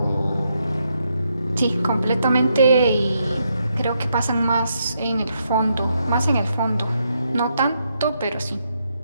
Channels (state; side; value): inverted; both; correlation -0.79